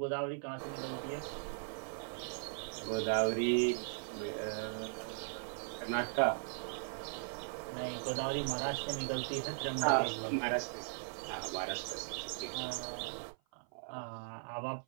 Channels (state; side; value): silent; left; 52 dB below the other